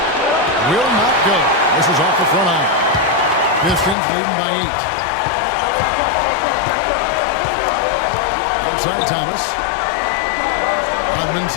Will not go. This is off the front eye. Pistons leading by 8. Outside Thomas. Hodman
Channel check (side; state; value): right; drops out; at 4.0 s